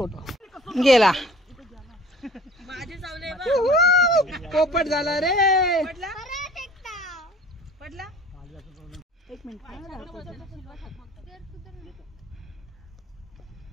गेला पोपट झाला रे पडला एक मिनिट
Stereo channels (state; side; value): normal; both; correlation 0.49